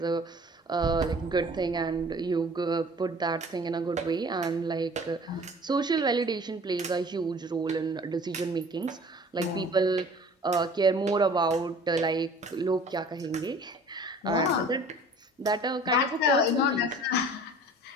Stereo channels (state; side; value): normal; both; correlation 0.47